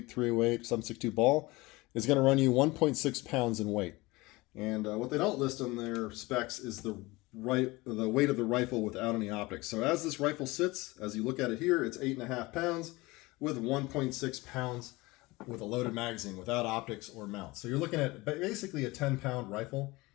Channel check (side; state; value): right; quieter; 21.9 dB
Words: 308, 7.62 ball, is going to run you 1.6 pounds in weight. And what they don't list on their specs is the weight of the rifle without any optics. So as this rifle sits, as you look at it here, it's 8.5 pounds with 1.6 pounds with a loaded magazine without optics or mount. So you're looking at basically a 10-pound rifle